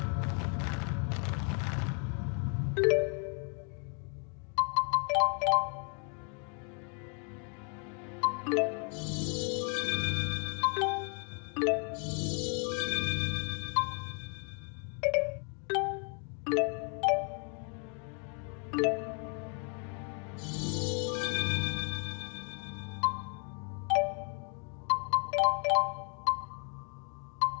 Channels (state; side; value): quieter; right; 39.9 dB